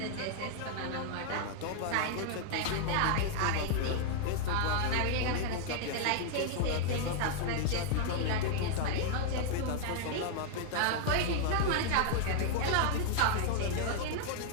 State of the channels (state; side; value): different; both; correlation -0.01